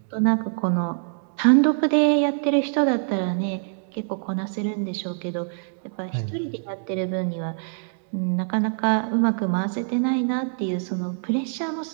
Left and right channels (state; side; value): silent; left; digital silence